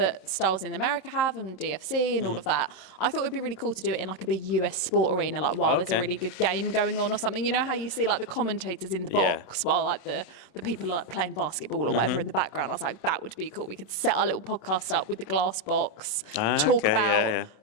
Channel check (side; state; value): right; late; 27 ms